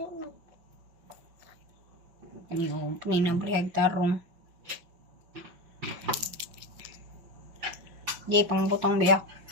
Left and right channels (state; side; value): late; left; 5.6 ms